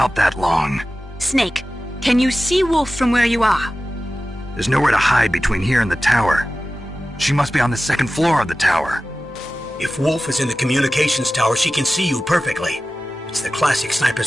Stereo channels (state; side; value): normal; both; correlation 0.95